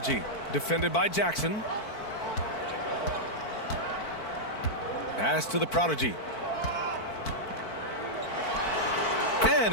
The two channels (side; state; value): right; late; 4.5 ms